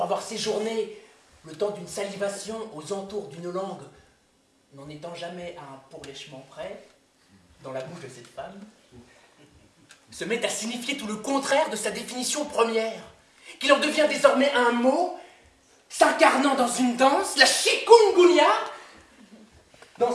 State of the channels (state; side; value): identical; both; correlation 1.00